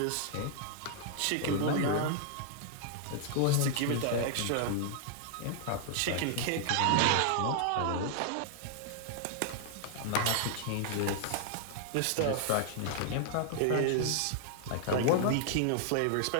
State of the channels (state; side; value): different; both; correlation -0.01